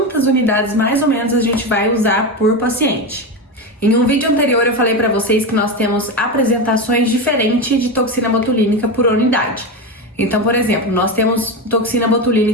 unidades mais ou menos a gente vai usar por paciente. Em um vídeo anterior eu falei para vocês que nós temos apresentações diferentes de toxina botulínica por unidade. Então, por exemplo, nós temos toxina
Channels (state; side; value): normal; both; correlation 0.17